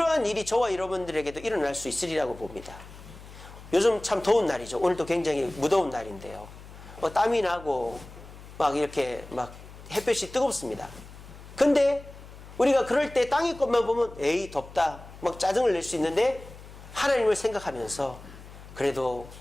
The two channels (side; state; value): left; noise; hum, 17 dB below the sound